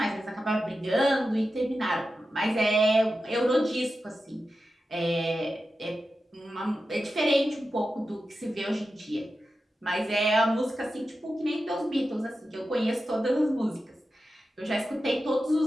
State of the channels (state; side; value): normal; both; correlation 0.91